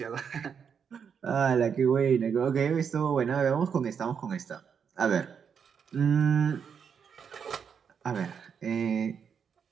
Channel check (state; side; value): quieter; left; 7.0 dB